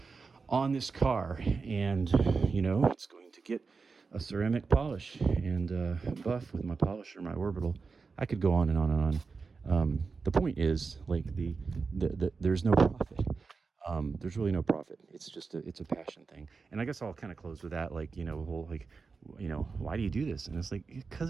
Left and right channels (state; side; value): quieter; left; 4.6 dB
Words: on this car. And it's going to get a ceramic polish and buff with my polisher, my orbital. I could go on and on and on. The point is, like, the there's no profit. There's really no profit. It's just it's a passion thing. And I guess I'll kind of close with that, like, why do you do this? And it's like,